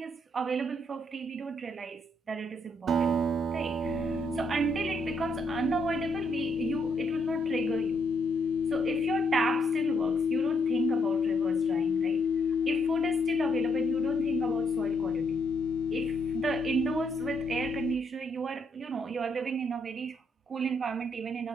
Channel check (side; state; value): both; normal; correlation 0.74